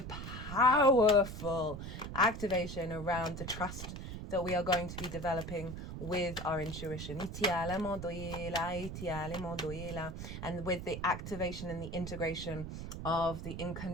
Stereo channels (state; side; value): noise; right; rumble, 8 dB below the sound